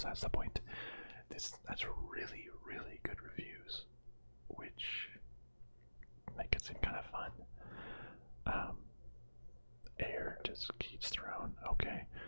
the point. That's really, really good reviews, which make it seem kind of fun. Air just keeps thrown. Okay,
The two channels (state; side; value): inverted; both; correlation -1.00